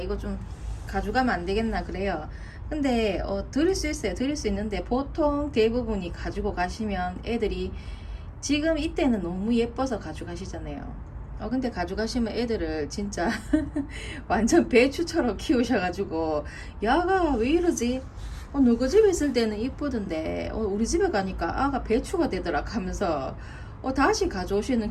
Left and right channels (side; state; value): both; identical; correlation 1.00